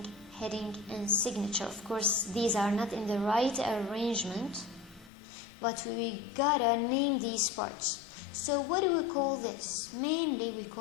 heading, and signature. Of course, these are not in the right arrangement, but we gotta name these parts. So what do we call this? Mainly we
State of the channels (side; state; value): right; drops out; at 5.1 s